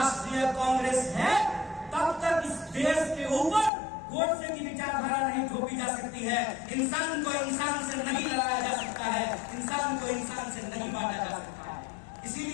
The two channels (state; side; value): drops out; right; at 3.7 s